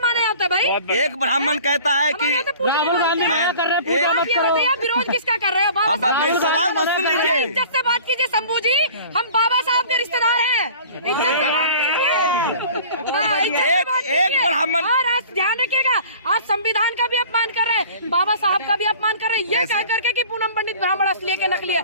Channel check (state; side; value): inverted; both; correlation -0.45